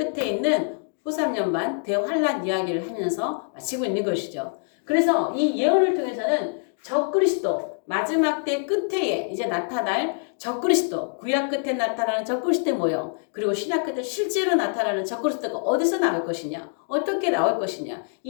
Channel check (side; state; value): right; silent; digital silence